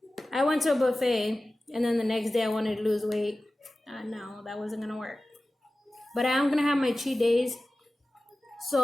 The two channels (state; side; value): normal; both; correlation 0.95